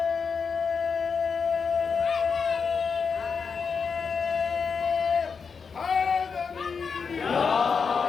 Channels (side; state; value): right; quieter; 5.7 dB